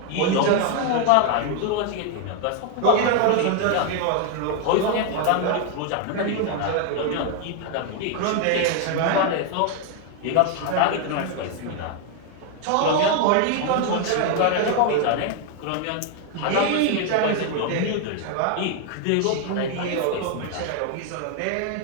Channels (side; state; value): both; different; correlation 0.01